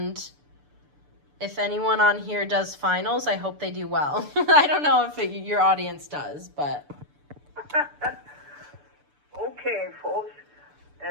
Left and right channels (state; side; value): late; left; 6.9 ms